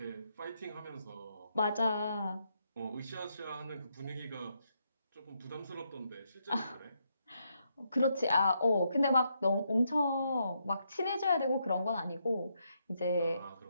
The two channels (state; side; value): inverted; both; correlation -0.78